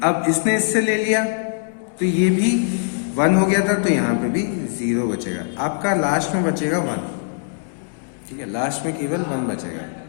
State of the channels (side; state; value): right; silent; digital silence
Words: अब इसने इससे ले लिया तो ये भी 1 हो गया था, तो यहाँ पे भी 0 बचेगा। आपका लास्ट में बचेगा 1, ठीक है, लास्ट में केवल 1 बचेगा।